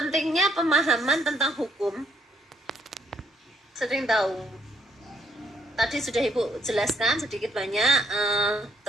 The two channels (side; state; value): both; normal; correlation 0.71